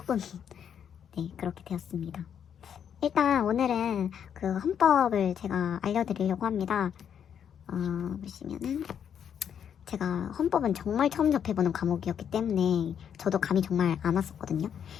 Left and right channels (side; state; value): right; quieter; 8.4 dB